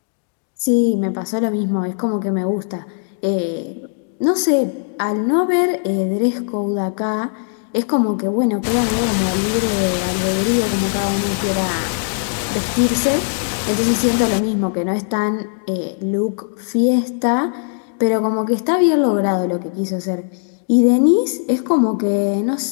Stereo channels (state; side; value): silent; right; digital silence